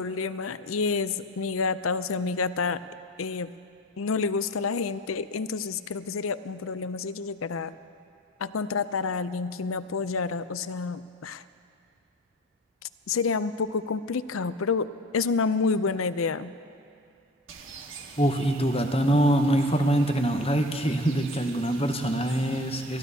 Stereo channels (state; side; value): normal; both; correlation 0.36